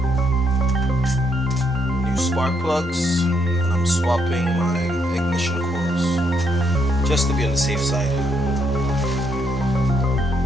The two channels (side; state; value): both; normal; correlation 0.75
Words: New spark plugs, and I'm swapping my ignition coils just to be on the safe side.